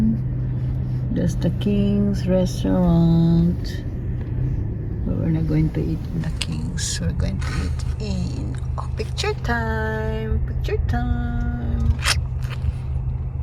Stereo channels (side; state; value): both; identical; correlation 1.00